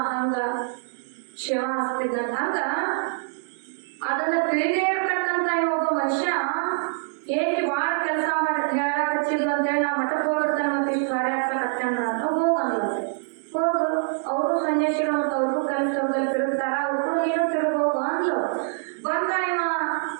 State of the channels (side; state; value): left; silent; 62 dB below the other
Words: ಹಂಗ ಶಿವ ಹಸ್ತಿದ್ದಂತ. ಹಂಗ ಅದನ್ನ ತಿಳಿದೇ ಇರ್ತಕ್ಕಂತ ಒಬ್ಬ ಮನುಷ್ಯ ಹೇಗೆ ಬಾಳ ಕೆಲಸ ಮಾಡಿ ಹೇಳಕ್ ಹಚ್ಚಿದ್ಲು ಅಂತೇಳಿ ನಾ ಮಠಕ್ಕೆ ಹೋಗಿರ್ತಾನೆ ಮತ್ತೆ ಇಷ್ಟು ಕಾರ್ಯ ಹಚ್ಚಕತ್ತೇನ ಅಂತ ಹೋಗಂದ್ಲ. ಹೋಗು, ಅವರು ಸನ್ಯಾಸಿಗಳು ಮತ್ತು ಅವ್ರಿಗೂ ಕೆಲಸದಲ್ಲಿ ತಿರುಗ್ತಾರ, ಅವ್ರಿಗೂ ನೀನು ತಿರುಗೋಗು ಅಂದ್ಲು. ಬಂದ ಇವ